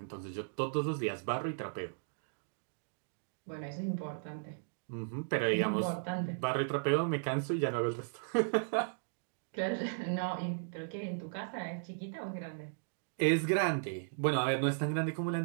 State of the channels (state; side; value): silent; left; digital silence